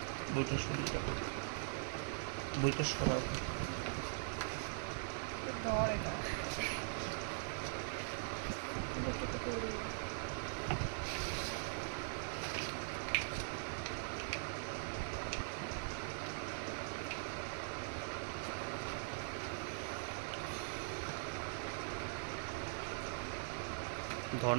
বইটা সরিয়ে রাখো, বইটা সরাও। ধর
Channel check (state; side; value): silent; left; digital silence